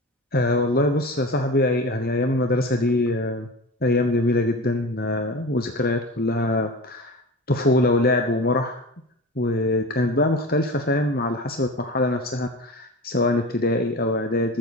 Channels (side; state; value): both; normal; correlation 0.31